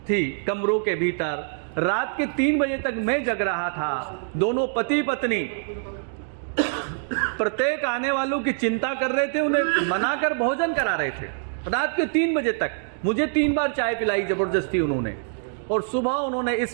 थी कमरों के भीतर। रात के 3 बजे तक मैं जग रहा था। दोनों पति पत्नी प्रत्येक आने वालों की चिंता कर रहे थे, उन्हें मनाकर भोजन करा रहे थे रात के 3 बजे तक। मुझे 3 बार चाय पिलाई जबरदस्ती उन्होंने, और सुबह उन्होंने इस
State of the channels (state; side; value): silent; left; digital silence